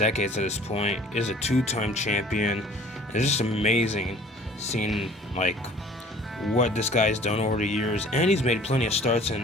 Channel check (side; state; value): both; normal; correlation 0.51